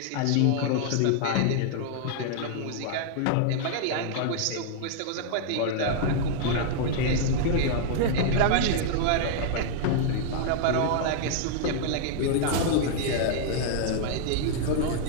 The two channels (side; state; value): both; different; correlation -0.01